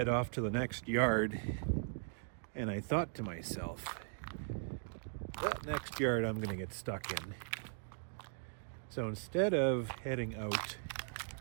off to the next yard, and I thought to myself, that next yard I'm going to get stuck in. So instead of heading out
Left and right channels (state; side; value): silent; left; digital silence